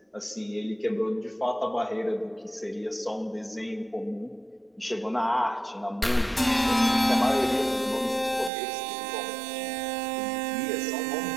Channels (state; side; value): drops out; left; at 8.5 s